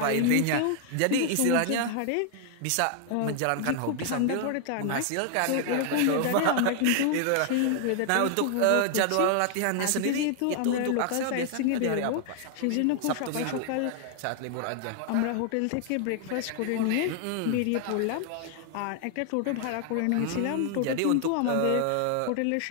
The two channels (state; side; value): different; both; correlation 0.00